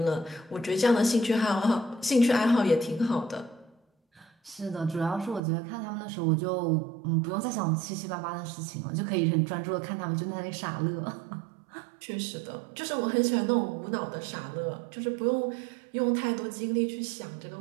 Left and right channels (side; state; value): left; drops out; at 5.4 s